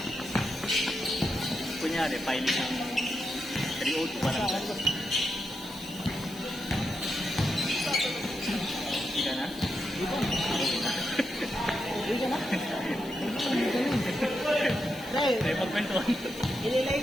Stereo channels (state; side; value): noise; left; hiss, 19 dB below the sound